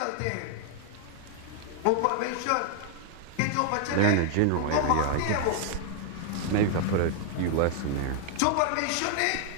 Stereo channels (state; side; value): different; both; correlation 0.00